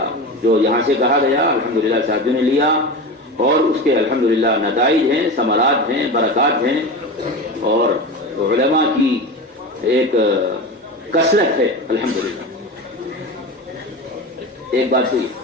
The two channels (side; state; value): both; normal; correlation 0.26